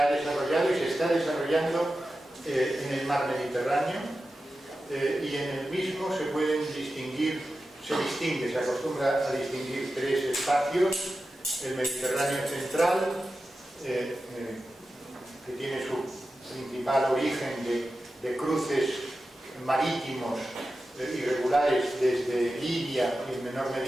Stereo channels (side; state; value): both; normal; correlation 0.92